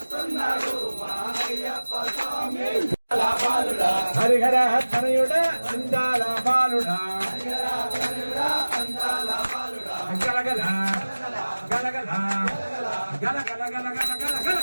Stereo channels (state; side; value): inverted; both; correlation -1.00